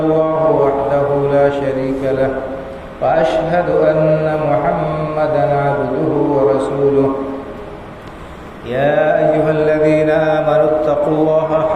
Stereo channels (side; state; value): both; identical; correlation 1.00